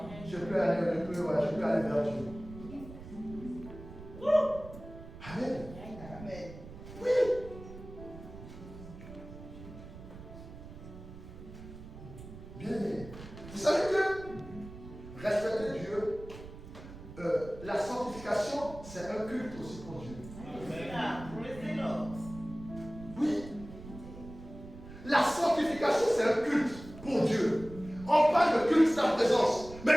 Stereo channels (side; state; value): right; noise; rumble, 15 dB below the sound